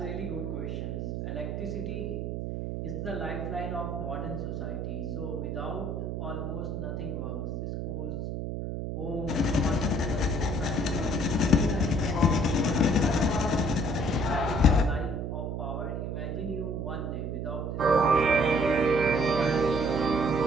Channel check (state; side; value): noise; right; hum, 3 dB below the sound